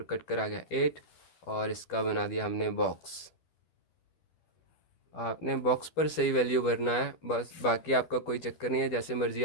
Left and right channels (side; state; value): right; late; 12 ms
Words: कट कर आ गया 8, और इसका बना दिया हमने बॉक्स। आपने बॉक्स पर सही वैल्यू भरना है बस, बाकी आपका कोई चक्कर नहीं है, जैसे मर्ज़ी